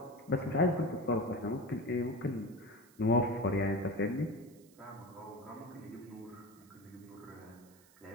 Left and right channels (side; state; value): right; noise; hiss, 27 dB below the sound